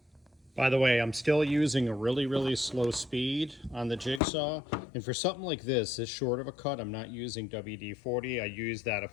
By the way, I'm still using a really, really slow speed on the jigsaw. And for something like this short of a cut, I'm not using WD-40. I use that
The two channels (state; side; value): drops out; right; at 4.2 s